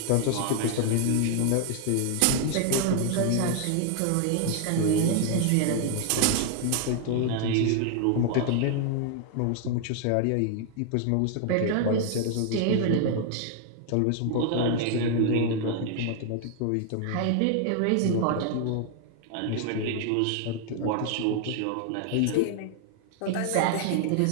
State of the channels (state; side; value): different; both; correlation 0.00